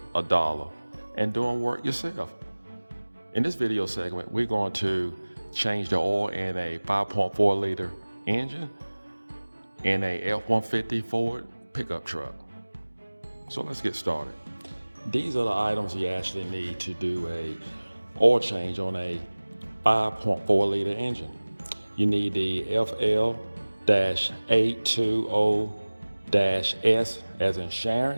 $1 and doing work yourself. In this video segment, we're going to change the oil in a 5.4 liter engine in a F-150 Ford pickup truck. So let's get started. These are the items you actually need to do a oil change on a 5.4 liter engine. You need the FL-820-S as in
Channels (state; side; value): inverted; both; correlation -1.00